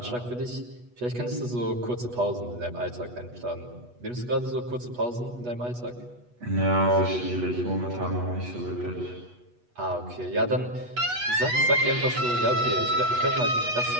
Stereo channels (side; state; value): left; late; 8.2 ms